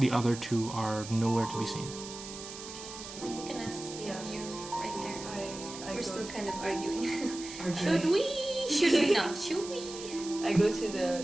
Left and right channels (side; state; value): right; noise; hiss, 12 dB below the sound